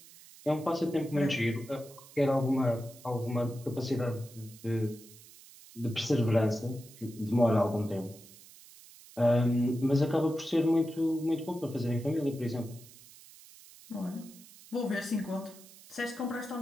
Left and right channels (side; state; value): right; noise; hiss, 21 dB below the sound